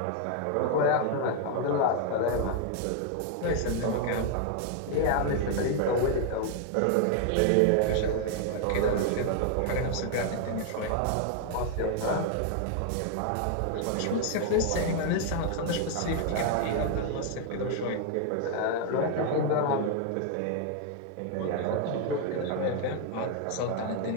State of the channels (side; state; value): both; different; correlation 0.00